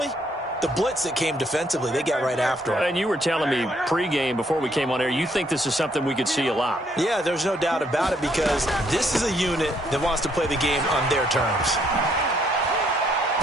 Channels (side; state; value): both; normal; correlation 0.69